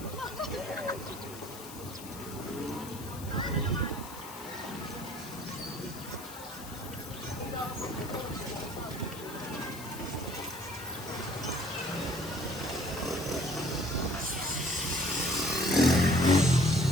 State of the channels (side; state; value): left; noise; hiss, 14 dB below the sound